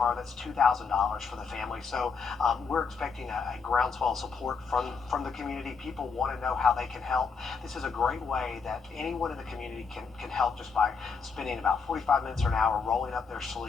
that's $2,000 for the family. So we're expecting a groundswell support from the community. People want to know how they can help. This is a great way that anyone in the community can help just by spending about 45 minutes or an hour rolling up their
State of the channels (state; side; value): quieter; right; 5.3 dB